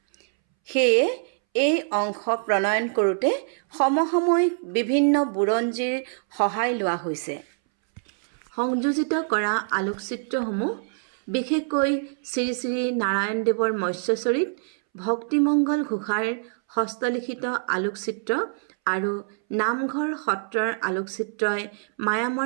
সেয়ে এই অংশ প্ৰণয়ন কৰোঁতে সমসাময়িক বিভিন্ন বুৰঞ্জীৰ সহায় লোৱা হৈছে। সংযোজিত কৰা আলোকচিত্ৰসমূহ বিশেষকৈ শ্ৰী শ্ৰী নাৰায়ণদেৱৰ মৎস্যচৰিত, ভক্তিমংগল ঘোষাৰ হস্তলিখিত আলোকচিত্ৰ আৰু নামঘৰ সত্ৰৰ আলোকচিত্ৰই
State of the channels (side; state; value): left; silent; 62 dB below the other